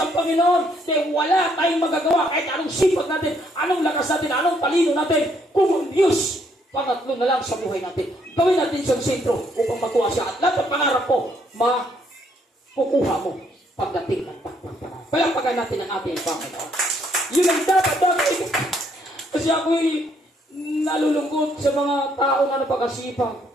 Panginoon. Dahil wala tayong magagawa kahit anong sipag natin, anong lakas natin, anong talino natin. Kung ang Diyos, pangatlo na lang sa buhay natin. Gawin natin siyang sentro upang makuha siya. At lahat ng pangarap po, makukuha mo pagdating ng pagpaparan. Palakpakan natin ang ating Panginoon. Yun ang dapat. Kasi ako'y nalulungkot sa mga tao na napakasipag.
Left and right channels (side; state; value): both; normal; correlation 0.70